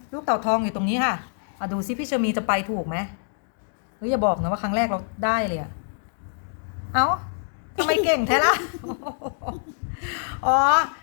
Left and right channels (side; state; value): right; silent; digital silence